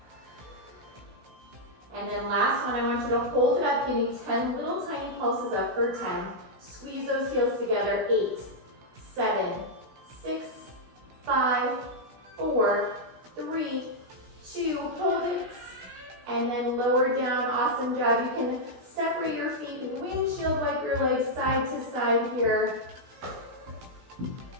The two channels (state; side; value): late; left; 16 ms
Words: And then last one, I want you to hold it up. Give me 10 little tiny pulses up for 10. Squeeze those heels together. 8, 7, 6, 5, 4, 3, 2, hold it. And then lower down, awesome job. You can separate your feet, windshield wipe your legs side to side here.